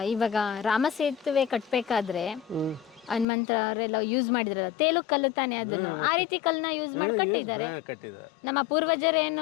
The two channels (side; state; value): right; drops out; at 3.2 s